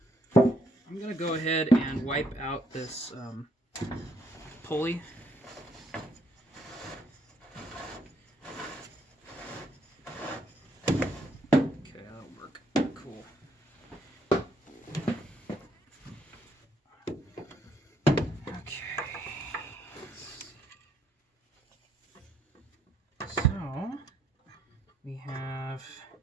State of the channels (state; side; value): normal; both; correlation 0.71